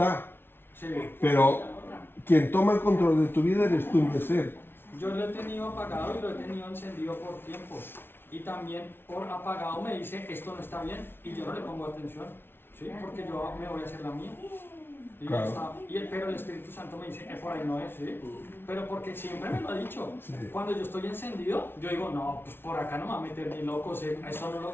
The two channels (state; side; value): late; right; 0.11 ms